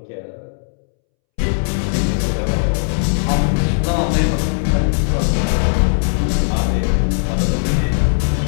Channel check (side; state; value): right; silent; 67 dB below the other